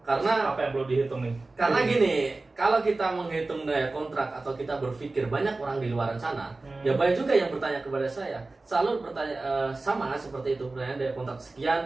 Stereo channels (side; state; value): left; quieter; 3.3 dB